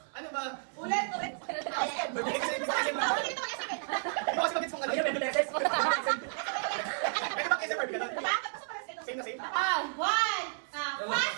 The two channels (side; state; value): left; silent; digital silence